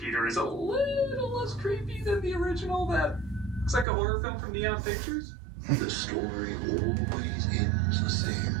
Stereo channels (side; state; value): left; drops out; at 3.9 s